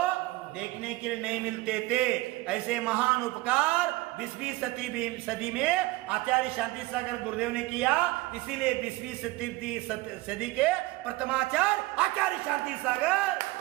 देखने के लिए नहीं मिलते थे। ऐसे महान उपकार 20वीं सदी में आचार्य शांति सागर गुरुदेव ने किया। इसीलिए 20वीं सदी के प्रथमाचार्य आचार्य शांति सागर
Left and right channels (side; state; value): left; quieter; 20.3 dB